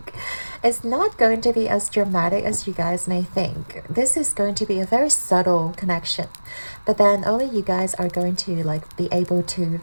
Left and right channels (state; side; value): inverted; both; correlation -1.00